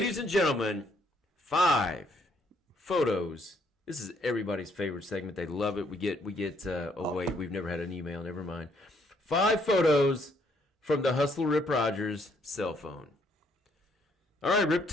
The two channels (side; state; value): both; normal; correlation 0.68